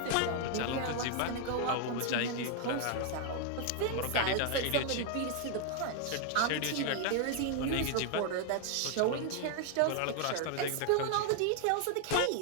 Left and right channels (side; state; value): both; different; correlation 0.00